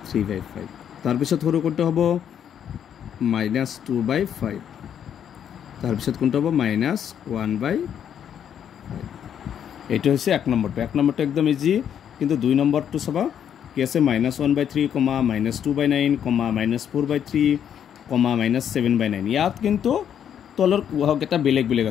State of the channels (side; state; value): right; quieter; 9.0 dB